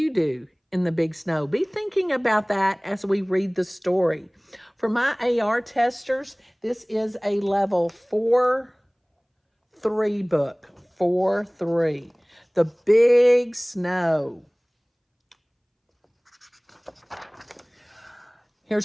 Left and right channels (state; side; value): identical; both; correlation 1.00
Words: do in the big snow? Be thinking about that as we read the story. For my AR testers, this is a level 4-3 book. 4-3. The Big Snow.